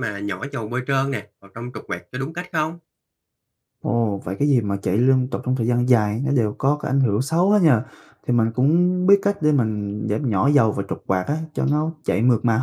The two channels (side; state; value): both; identical; correlation 1.00